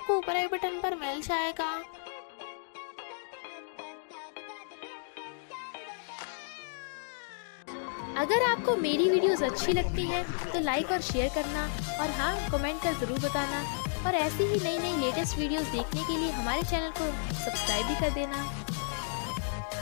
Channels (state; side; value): silent; right; digital silence